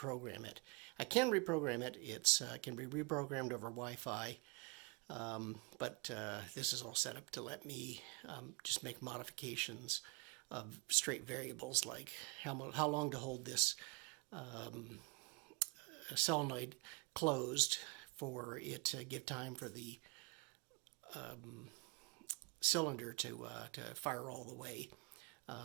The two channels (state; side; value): quieter; left; 30.5 dB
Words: it. I can reprogram it. It can be reprogrammed over Wi-Fi, but this is all set up to let me just make modifications of straight variables, like how long to hold this solenoid closed for it to give time for the cylinder to fire all the way.